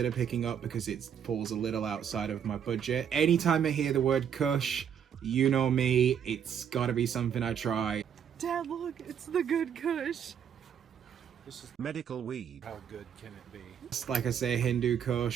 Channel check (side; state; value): left; quieter; 8.3 dB